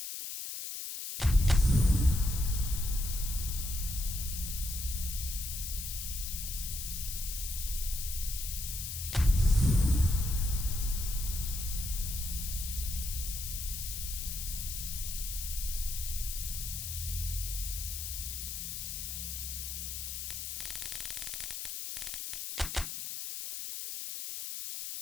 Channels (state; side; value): noise; left; hiss, 5 dB below the sound